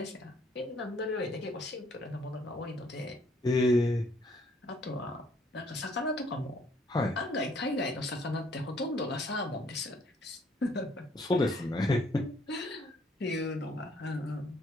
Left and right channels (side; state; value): both; normal; correlation 0.64